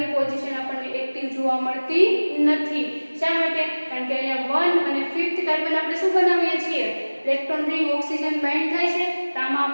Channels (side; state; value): both; inverted; correlation -1.00